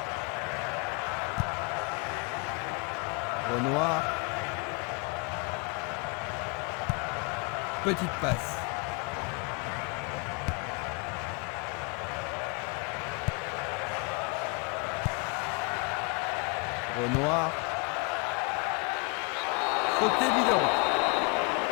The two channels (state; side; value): quieter; right; 31.4 dB